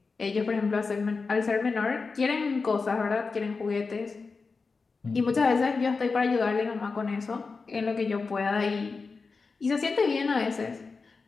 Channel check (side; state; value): right; quieter; 4.4 dB